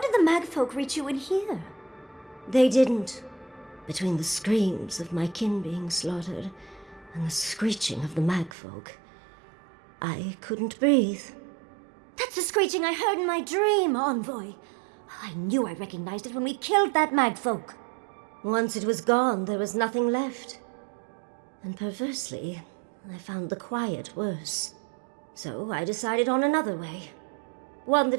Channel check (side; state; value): left; drops out; at 8.5 s